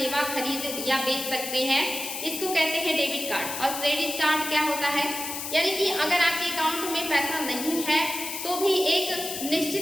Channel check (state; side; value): noise; left; hiss, 6 dB below the sound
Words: खरीद या बेच सकते हैं। इसको कहते हैं डेबिट कार्ड। और क्रेडिट कार्ड क्या होता है, यानी कि अगर आपके अकाउंट में पैसा नहीं है तो भी एक